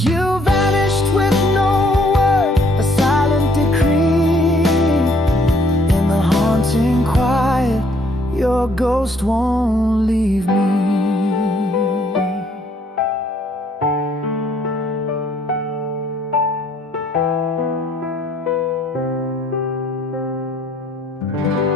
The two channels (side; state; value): both; normal; correlation 0.65